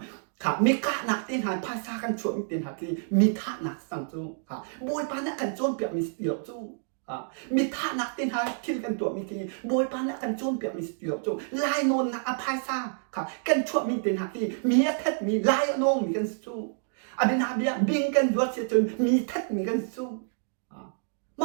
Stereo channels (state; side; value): silent; left; digital silence